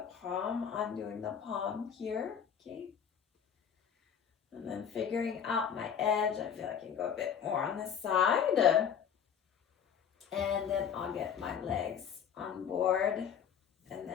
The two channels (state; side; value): quieter; right; 8.0 dB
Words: palm, undoing the palm here, okay? And then figuring out my edge, I feel I can go a bit more on this side. And then I'll get my legs on board. And